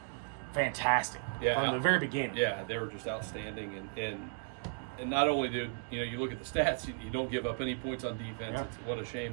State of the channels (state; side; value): silent; left; 54 dB below the other